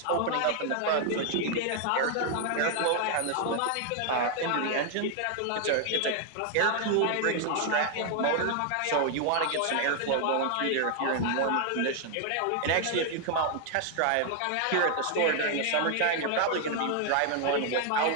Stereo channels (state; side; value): different; both; correlation 0.00